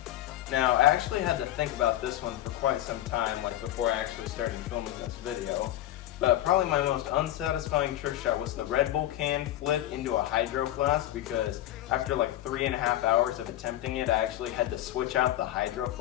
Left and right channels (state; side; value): quieter; right; 13.8 dB